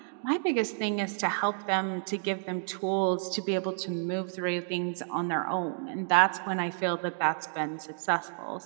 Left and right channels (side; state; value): left; silent; digital silence